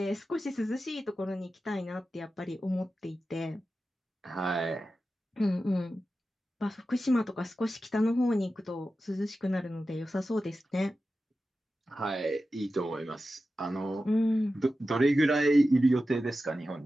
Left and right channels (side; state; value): both; normal; correlation 0.93